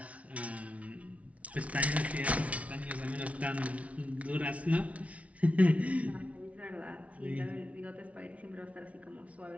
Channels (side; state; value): left; late; 0.065 ms